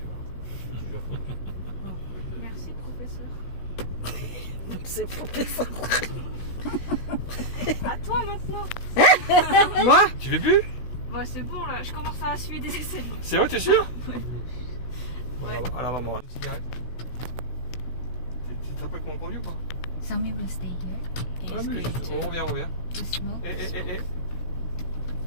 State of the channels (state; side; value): late; right; 16 ms